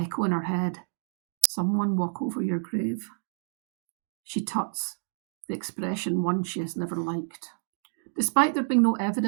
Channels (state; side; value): silent; left; digital silence